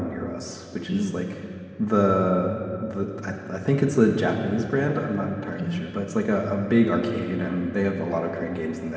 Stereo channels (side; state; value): both; identical; correlation 1.00